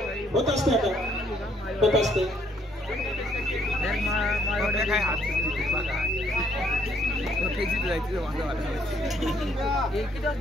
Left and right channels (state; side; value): normal; both; correlation 0.67